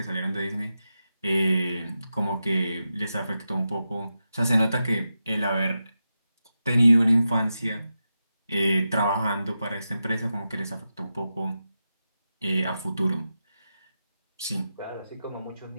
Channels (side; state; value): both; inverted; correlation -0.90